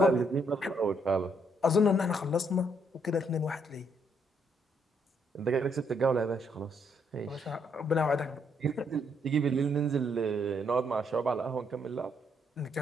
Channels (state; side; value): normal; both; correlation 0.72